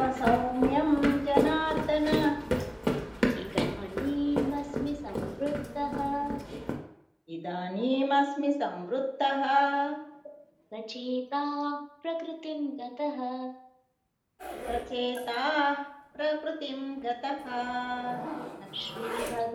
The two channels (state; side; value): identical; both; correlation 1.00